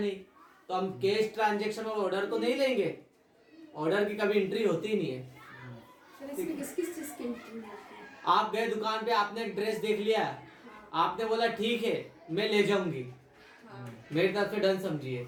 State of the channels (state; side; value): identical; both; correlation 1.00